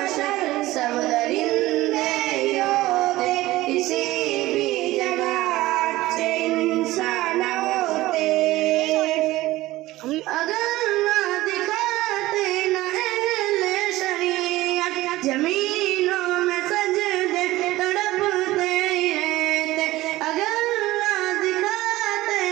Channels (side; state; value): left; quieter; 17.5 dB